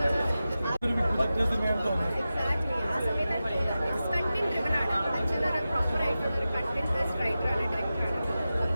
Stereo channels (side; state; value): both; inverted; correlation -0.94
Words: ഒരു വിപുലത്തെ സിനിമയാണ് തോന്നുന്നത്. എക്സാക്ട്ലി ആ സമയത്താണ് കണ്ടന്റ് ഡ്രിവൻ ആണ്. അച്ഛനൊരു പ്രോപ്പർ ആയിട്ടുള്ള ഒരു കണ്ടന്റ് ബേസ്ഡ് റൈറ്ററാണ്, ഡയറക്ടറാണ്.